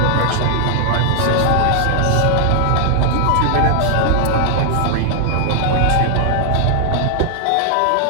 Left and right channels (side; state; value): both; different; correlation 0.00